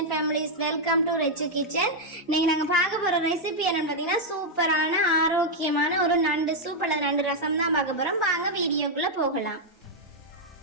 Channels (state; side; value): normal; both; correlation -0.02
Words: families, welcome to Rechu kitchen. இன்னைக்கு நாங்கள் பார்க்க போற ரெசிபி என்னன்னு பார்த்தீங்கன்னா சூப்பரான ஆரோக்கியமான ஒரு நண்டு சூப் அல்லது நண்டு ரசம் தான் பார்க்க போறோம். வாங்க வீடியோக்குள்ள போகலாம்.